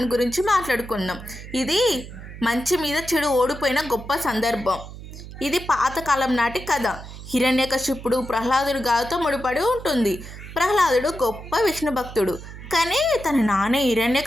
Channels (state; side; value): noise; right; hum, 13 dB below the sound